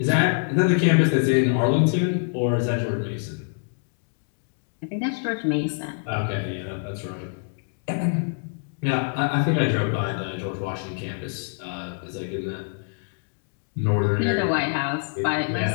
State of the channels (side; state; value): right; silent; 62 dB below the other